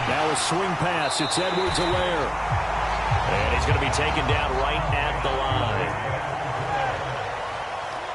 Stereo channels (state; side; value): identical; both; correlation 1.00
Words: Now a swing pass. It's Edwards-Helaire. And he's going to be taken down right at the